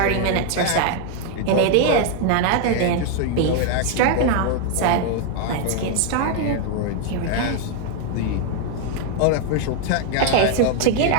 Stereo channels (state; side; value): different; both; correlation 0.00